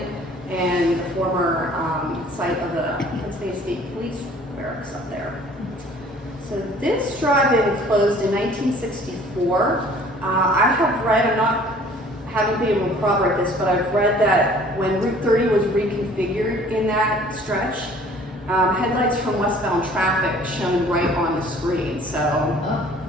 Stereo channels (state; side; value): normal; both; correlation 0.52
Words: and the former site of the Pennsylvania State Police barracks up there. So this drive-in closed in 1964. I have read, haven't been able to corroborate this, but I've read that when Route 30 was reconfigured in that stretch, headlights from westbound traffic shone right on the screen. So